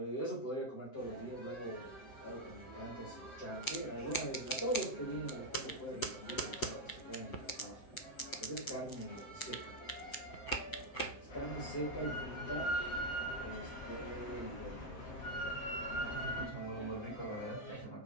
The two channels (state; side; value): late; right; 7.7 ms